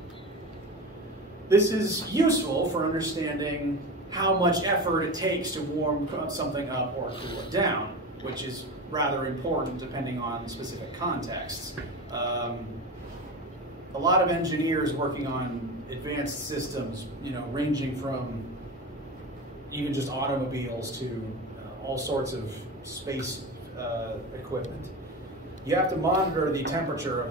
This is useful for understanding how much effort it takes to warm something up or cool it down, which is rather important depending on specific contexts. A lot of engineers working on advanced systems, you know, ranging from even just automobiles to all sorts of space equipment. You have to monitor the temperature of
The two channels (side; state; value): both; normal; correlation 0.26